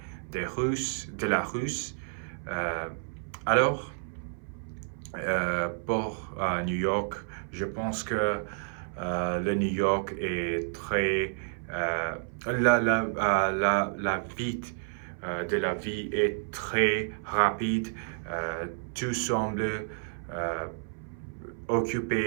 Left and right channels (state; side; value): silent; left; 57 dB below the other